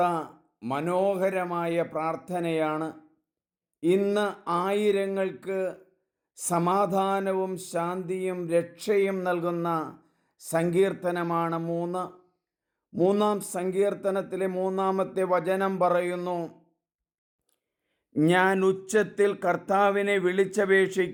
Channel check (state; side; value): identical; both; correlation 1.00